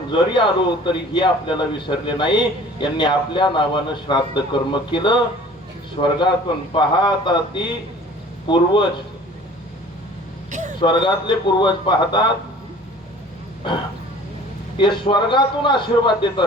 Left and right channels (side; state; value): both; normal; correlation 0.48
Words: जरी आलो तरी हे आपल्याला विसरले नाही. यांनी आपल्या नावानं श्राद्ध कर्म केलं. स्वर्गातून पाहतात ती पूर्वज, स्वर्गातले पूर्वज पाहतात ते स्वर्गातून आशीर्वाद देत